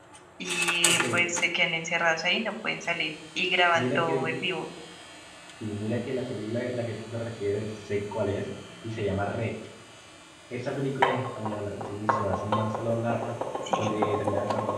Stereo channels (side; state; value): both; identical; correlation 1.00